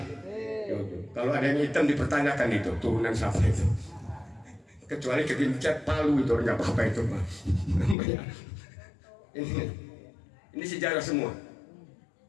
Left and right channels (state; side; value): drops out; right; at 8.0 s